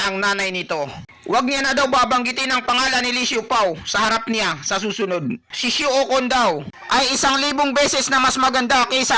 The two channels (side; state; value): both; identical; correlation 1.00